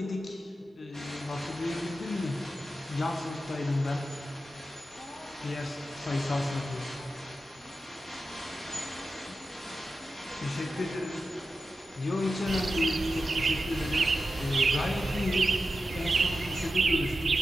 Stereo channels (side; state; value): both; normal; correlation 0.91